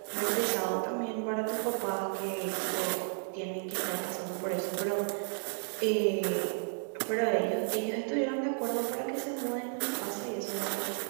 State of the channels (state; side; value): silent; left; 56 dB below the other